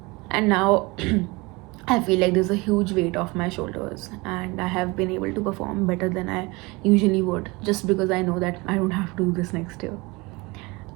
now I feel like there's a huge weight off my shoulders, and I have been able to perform better than I usually would, just because I know that I don't have to do this next year.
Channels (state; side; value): quieter; left; 24.8 dB